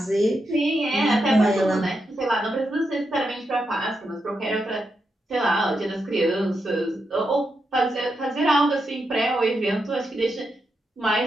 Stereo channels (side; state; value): both; normal; correlation 0.85